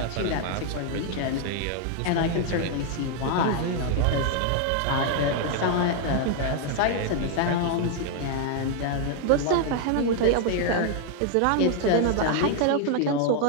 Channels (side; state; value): both; different; correlation 0.00